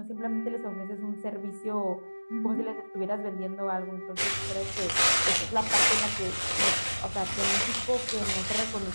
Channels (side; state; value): both; inverted; correlation -1.00